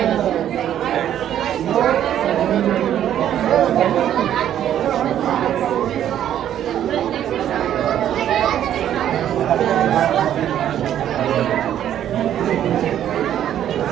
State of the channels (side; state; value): left; quieter; 10.8 dB